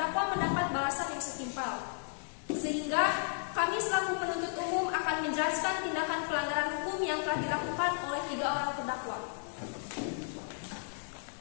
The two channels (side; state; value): right; silent; 55 dB below the other